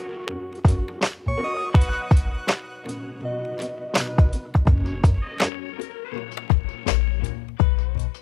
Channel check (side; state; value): right; drops out; at 5.5 s